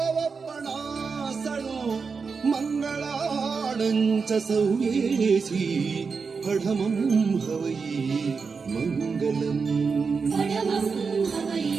ಮಂಗಳಾಣಂಚ ಸೌಯೇಸಿ ಪಢಮಂ ಹವೈ ಮಂಗಲಂ ಪಢಮಂ ಹವೈ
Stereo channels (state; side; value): quieter; left; 5.1 dB